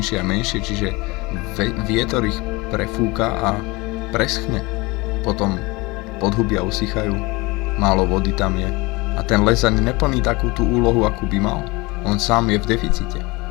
a menšie, čiže vietor ich prefúka a preschne. Potom podhubia usychajú, málo vody tam je a ten les ani neplní takú tú úlohu, akú by mal. On sám je v deficite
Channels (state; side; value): quieter; right; 24.2 dB